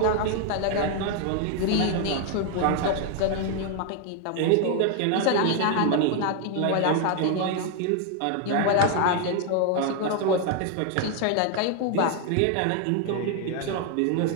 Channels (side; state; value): both; different; correlation 0.00